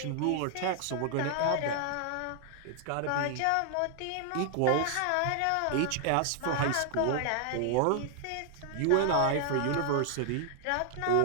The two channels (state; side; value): different; both; correlation 0.00